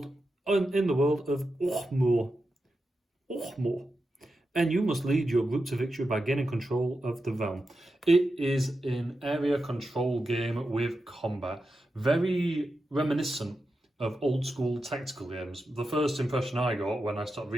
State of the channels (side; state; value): both; normal; correlation 0.89